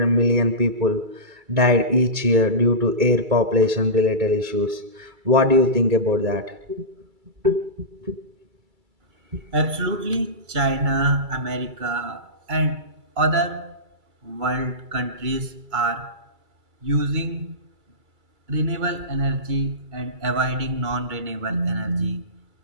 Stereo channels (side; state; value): left; late; 2.3 ms